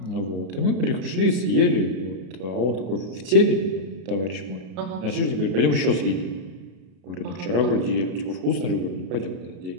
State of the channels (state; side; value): late; left; 33 ms